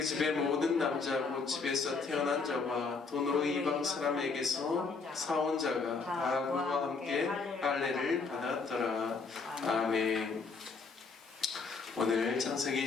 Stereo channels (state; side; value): quieter; right; 4.5 dB